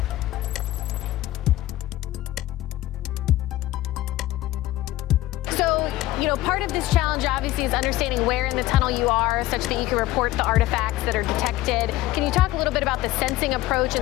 Part of this challenge obviously is understanding where in the tunnel you are such that you can report the artifacts that are detected. Can you talk a little bit about the sensing approach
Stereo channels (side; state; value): right; quieter; 15.8 dB